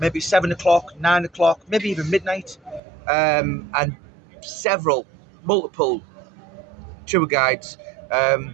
7 o'clock, 9 o'clock, maybe even midnight, and multiple tour guides.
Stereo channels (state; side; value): drops out; left; at 2.8 s